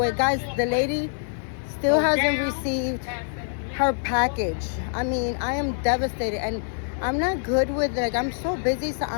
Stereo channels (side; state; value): right; silent; digital silence